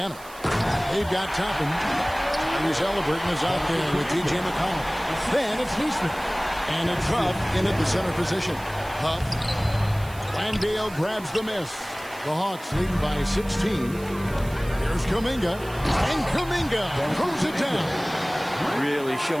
they've got Toppin. Tyrese Halliburton is out there with T.J. McConnell. Then it's Neesmith. And it's Huff in at the center position. Huff. Landale grabs the miss. The Hawks leading by 16. Here's Kuminga. And Kuminga throws it down. Really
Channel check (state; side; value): noise; right; hiss, 19 dB below the sound